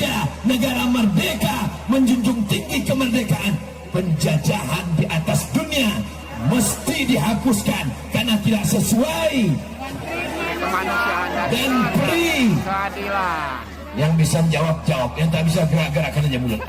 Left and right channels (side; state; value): both; identical; correlation 1.00